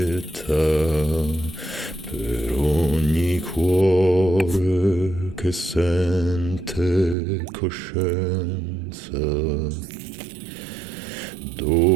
per ogni cuore che sente coscienza.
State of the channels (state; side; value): drops out; left; at 7.2 s